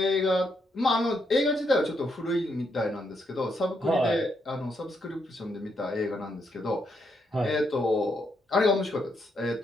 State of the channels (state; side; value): normal; both; correlation 0.77